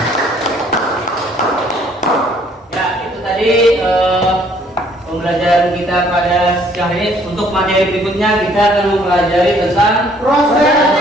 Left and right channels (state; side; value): normal; both; correlation 0.62